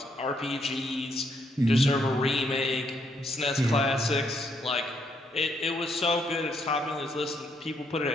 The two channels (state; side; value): normal; both; correlation 0.74